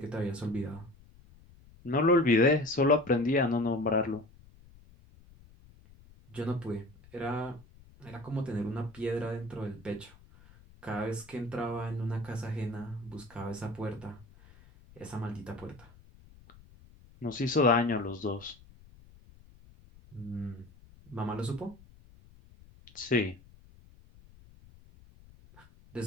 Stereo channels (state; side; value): noise; left; rumble, 24 dB below the sound